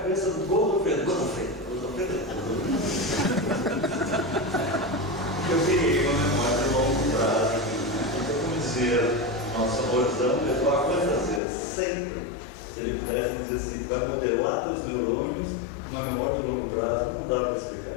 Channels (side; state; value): right; drops out; at 11.4 s